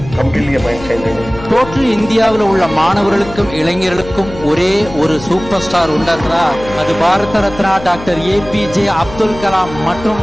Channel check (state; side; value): noise; left; hum, 14 dB below the sound